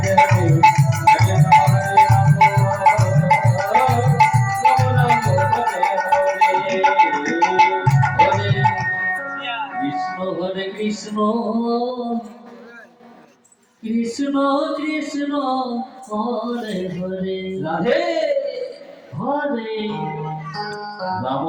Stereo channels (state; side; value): identical; both; correlation 1.00